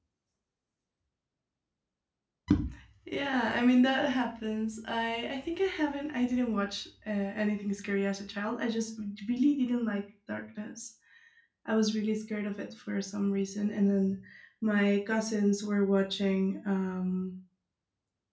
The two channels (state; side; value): identical; both; correlation 1.00